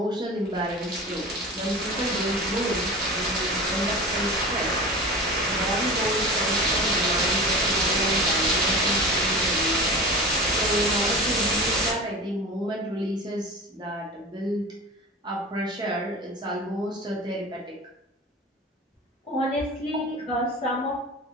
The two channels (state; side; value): normal; both; correlation 0.33